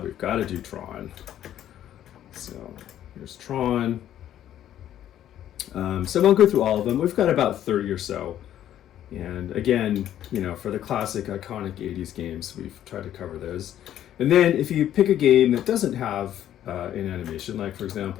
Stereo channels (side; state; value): right; quieter; 11.4 dB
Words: we've got to do Tron. So here's Tron. So I won't go through all of them. We've got about 30 or so. And again, for the classic iconic 80s games, we've tried to cover those. And then if you pick a game that doesn't have an animation, like for